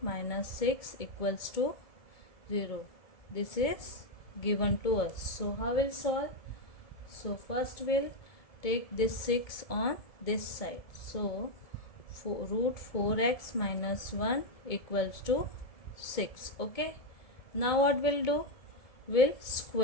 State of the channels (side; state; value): right; late; 2.2 ms